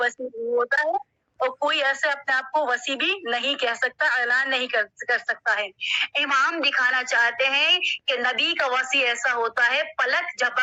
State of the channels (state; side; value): identical; both; correlation 1.00